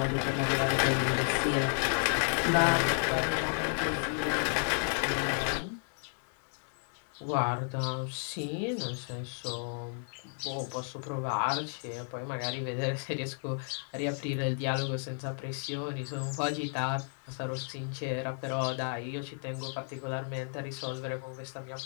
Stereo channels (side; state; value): right; silent; 56 dB below the other